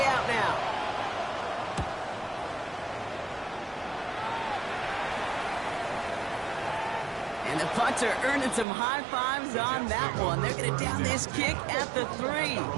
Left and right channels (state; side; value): drops out; left; at 8.7 s